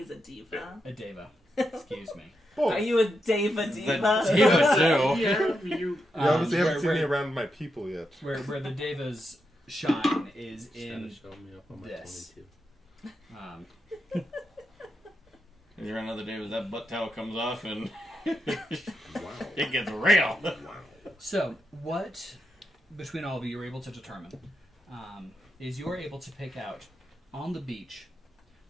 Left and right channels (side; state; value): both; normal; correlation 0.84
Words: a diva. A Deva. Excuse me. Boy, Are you a Deva diva? The diva too. Yeah, you. you obviously haven't seen me where, around my people yet. where the Devas shine is Just gotta in show me up on my this. 22. If you're another day with that butt towel comes off and Wow. it gets real. Wow. So, what, between all of you, you're able to determine is you're able to pick out, on the beach,